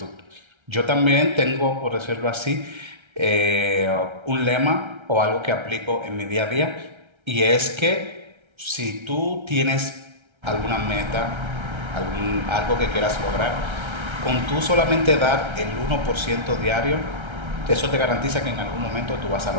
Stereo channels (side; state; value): left; late; 1.3 ms